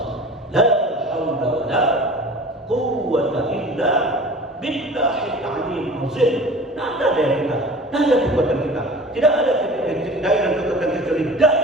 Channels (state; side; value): normal; both; correlation 0.40